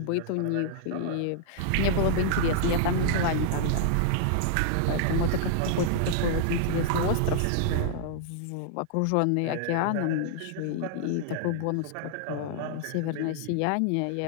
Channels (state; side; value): different; both; correlation -0.01